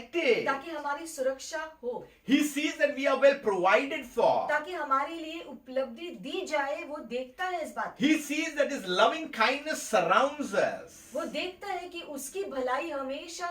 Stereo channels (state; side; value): identical; both; correlation 1.00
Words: ताकि हमारी सुरक्षा हो, He sees that we are well provided for. ताकि हमारे लिए उपलब्धि दी जाए, वो देखता है इस बात। He sees that His loving kindness surrounds us. वो देखता है कि उसकी भलाई हमेशा